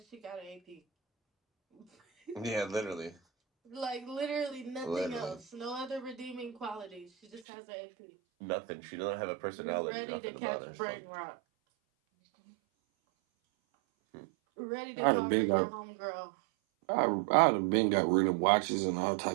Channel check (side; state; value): left; drops out; at 7.4 s